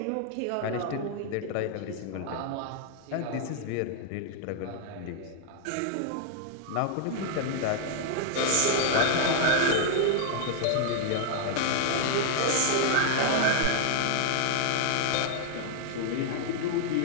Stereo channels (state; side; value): different; both; correlation 0.00